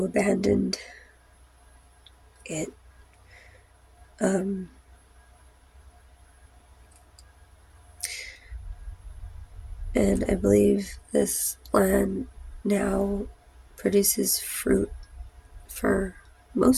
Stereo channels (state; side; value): identical; both; correlation 1.00